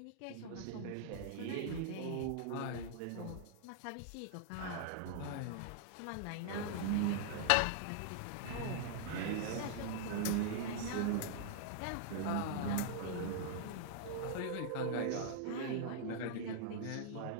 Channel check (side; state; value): both; different; correlation -0.01